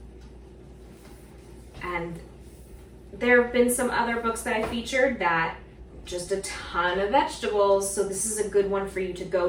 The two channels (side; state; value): both; identical; correlation 1.00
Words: And there have been some other books that I featured that just a ton of vegetables, so this is a good one for you to go